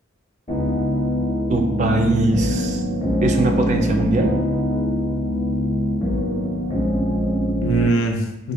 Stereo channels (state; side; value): normal; both; correlation 0.70